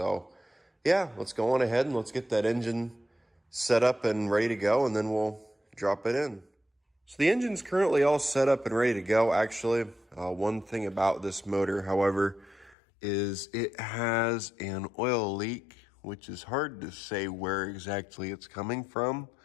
yeah, let's go on ahead and let's get that engine set up and ready to go, and then we'll drop it in. So the engine's currently all set up and ready to go. Actually, one thing about this motor, however, is it has an oil leak, which is hard to say where exactly it's coming from.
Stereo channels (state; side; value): drops out; right; at 12.8 s